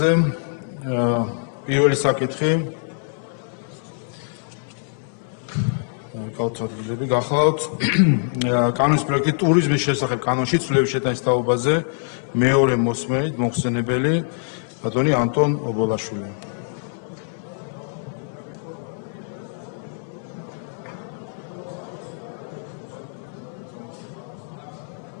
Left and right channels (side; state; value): right; silent; 63 dB below the other